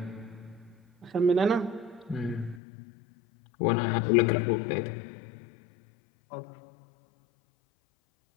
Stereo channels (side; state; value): right; drops out; at 2.6 s